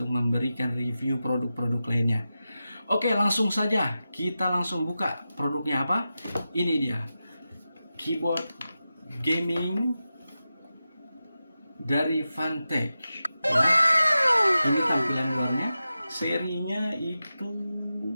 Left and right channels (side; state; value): both; inverted; correlation -0.92